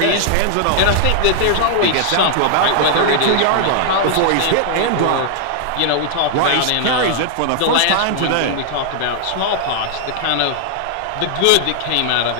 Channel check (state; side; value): different; both; correlation 0.00